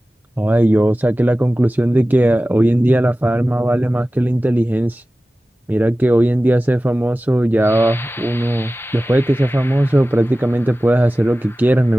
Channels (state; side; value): normal; both; correlation 0.96